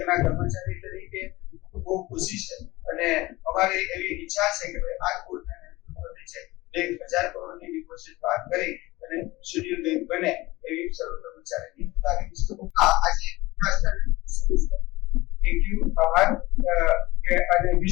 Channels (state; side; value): quieter; right; 20.0 dB